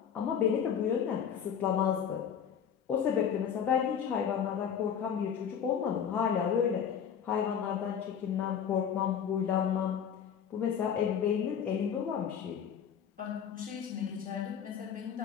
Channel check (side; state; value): right; quieter; 8.0 dB